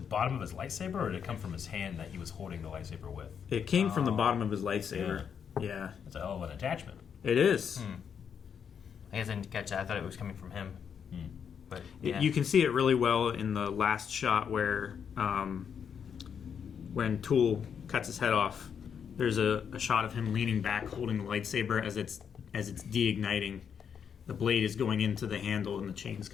of his lightsaber, or did it come from his hand that he was holding the lightsaber with? It came from the bottom of his lightsaber. Yeah, it's a hell of an attachment. It is. I guess I didn't catch that. I thought it was coming from him. But you can see it really well in the last shot where when Tool cuts his head off, there's a shot of him leaning back holding the lightsaber as it's deigniting. The blade is going into the handle and the chain's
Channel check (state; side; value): quieter; right; 7.4 dB